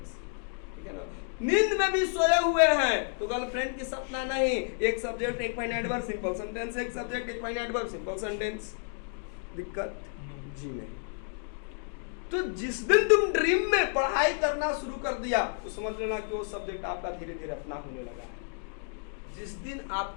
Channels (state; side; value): silent; right; 57 dB below the other